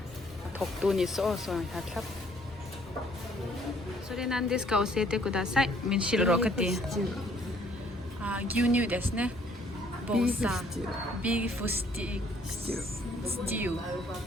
Toktu ni so hatlap. それなんですか教えてください。min shiro kati. 牛乳ですね。ボーサー。ビーフスティー。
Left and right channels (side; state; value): both; normal; correlation 0.62